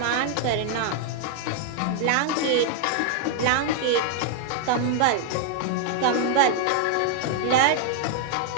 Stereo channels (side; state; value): both; different; correlation 0.00